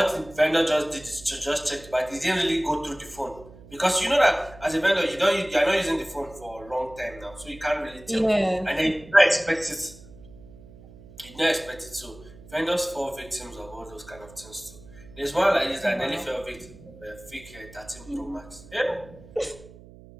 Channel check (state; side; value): noise; right; hum, 20 dB below the sound